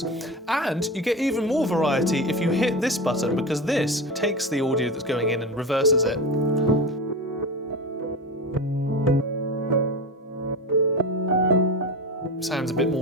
And you get even more variety if you hit this button, because this takes the audio that's going in and reverses it. Sounds a bit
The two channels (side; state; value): both; normal; correlation 0.25